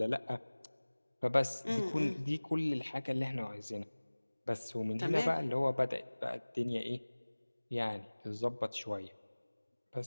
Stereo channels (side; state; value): both; inverted; correlation -1.00